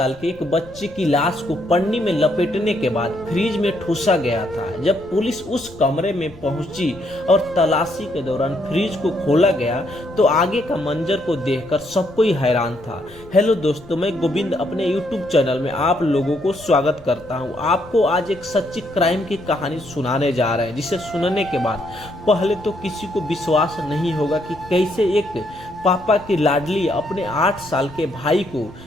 के एक बच्चे की लाश को पन्नी में लपेटने के बाद फ्रीज में ठूसा गया था। जब पुलिस उस कमरे में पहुंची और तलाशी के दौरान फ्रीज को खोला गया तो आगे का मंजर को देखकर सब कोई हैरान था। हेलो दोस्तों, मैं गोविंद अपने यूट्यूब चैनल में आप लोगों को स्वागत करता हूं। आपको आज एक सच्ची क्राइम की कहानी सुनाने जा रहे हैं, जिसे सुनने के बाद पहले तो किसी को विश्वास नहीं होगा कि कैसे एक पापा की लाडली अपने 8 साल के भाई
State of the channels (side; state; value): left; noise; rumble, 22 dB below the sound